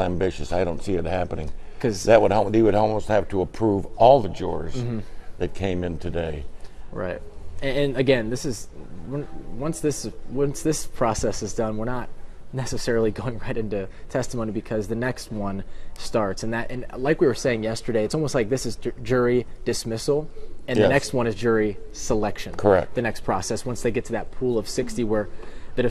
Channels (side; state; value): both; identical; correlation 1.00